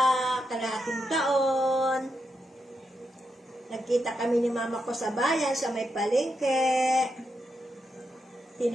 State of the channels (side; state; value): both; normal; correlation 0.84